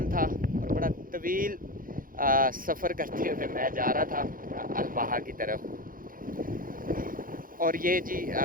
था और बड़ा तवील सफ़र करते हुए मैं जा रहा था अल-बहा की तरफ। और ये जी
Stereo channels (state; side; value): late; left; 0.40 ms